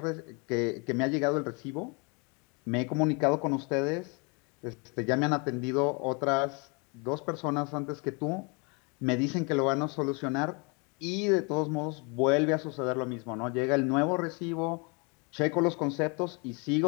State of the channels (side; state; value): right; quieter; 32.2 dB